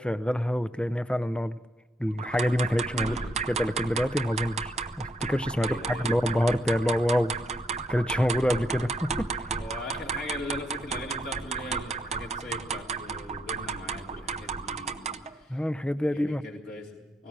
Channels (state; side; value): normal; both; correlation 0.77